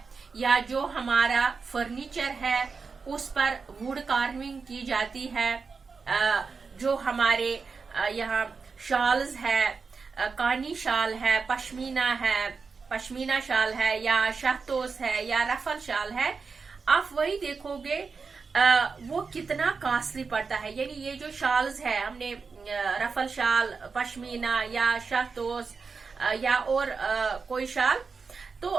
या जो हमारा फर्नीचर है उस पर वुड कार्विंग की जाती है, जो हमारे यहाँ शॉल्स है, कानी शाल है, पश्मीना शाल है या शहतोस है या रफल शाल है, आप वही देखोगे वो कितना कॉस्टली पड़ता है। यानी ये जो शॉल्स है, हमने रफल शाल, पश्मीना या शहतोस या और कोई शाल, तो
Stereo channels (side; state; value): left; quieter; 4.9 dB